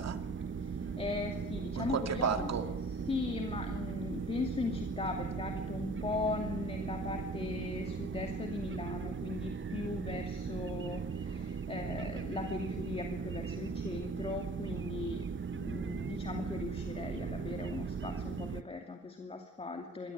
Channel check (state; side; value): normal; both; correlation 0.48